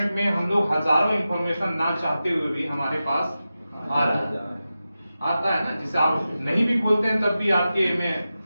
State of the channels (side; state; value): both; inverted; correlation -0.93